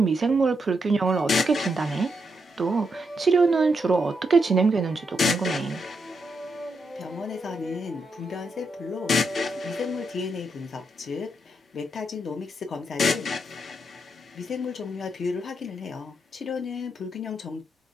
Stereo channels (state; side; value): normal; both; correlation 0.82